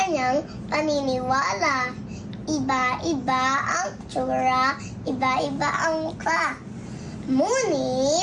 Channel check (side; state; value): both; identical; correlation 1.00